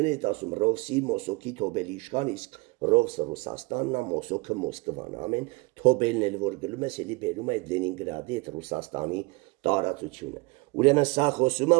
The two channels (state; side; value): quieter; left; 25.3 dB